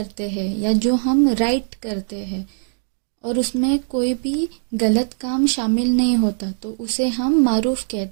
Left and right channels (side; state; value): left; silent; digital silence